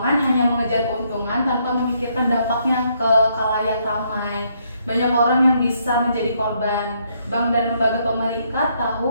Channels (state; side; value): inverted; both; correlation -0.72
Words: hanya mengejar keuntungan tanpa memikirkan dampaknya ke khalayak ramai. Banyak orang yang bisa menjadi korban. Bank dan lembaga pemerintah